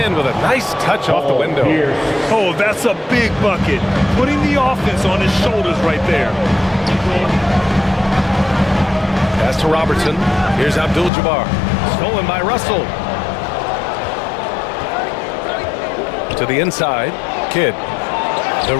with a nice touch off the window. Oh, that's a big bucket. Putting the offense on his shoulders right there. Pass to Robertson. Here's Abdul-Jabbar. Stolen by Russell. To the inside. Kidd. The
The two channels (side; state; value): right; drops out; at 11.1 s